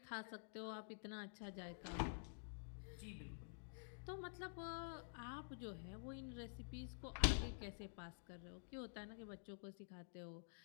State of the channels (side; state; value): right; silent; digital silence